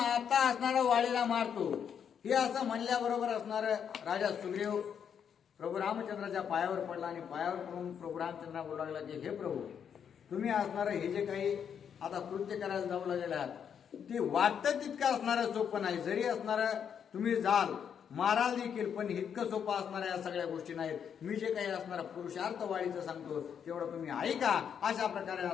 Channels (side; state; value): right; quieter; 7.9 dB